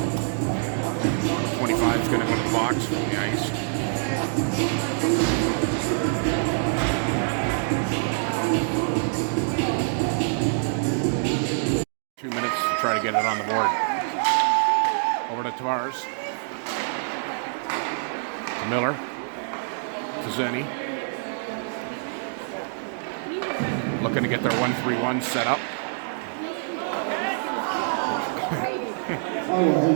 25 is going to go to the box from the ice. Two minutes to try to get it on the board. Over to Tavares. To Miller. To Zenny. Looking to get their 1-3-1 set up.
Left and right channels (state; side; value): silent; left; digital silence